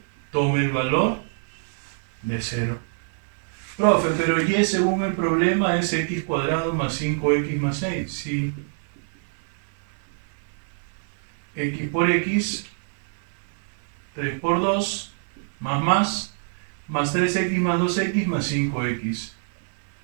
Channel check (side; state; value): left; silent; 58 dB below the other